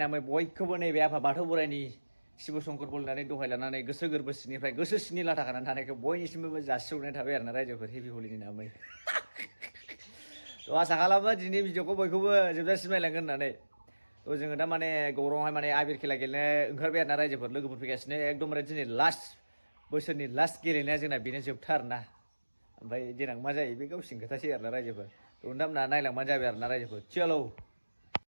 बयखौबो नैबे आफा बाथौ बोराइनि शिब शंकर बोलनानै दहाय लानानै गोसो गोरबो सिंनिफ्राय गोसो सिंनि लाथा खानानै थानायखौ बयनिसिमबो जासिहरनाय थाबाय आरोना रायजोफोर हेपि हलिनि नामै थ' आसा खालामो दिनै भिडिअखौ बयखौबो जोबजासिम नायलांगोन होननानै थ' जोङो दा माने गौराङावहाय माने आबिर खेला गेलेनो ओंखारबाय आरोना रायजोफोर लोगोफोर फैगासिनो एकदमबारे दिनै लास्ट बोसोरनि लास्ट गेलेनाया जोंना बेनो जोबथा आरोना ओमफ्राय देनां मा जायो बे गावसिनि खोथासै आरोना रायजोफोर थ' नोंथांमोना नायलांबानो जाबाय आरोना रायजोफोर चलो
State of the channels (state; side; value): inverted; both; correlation -1.00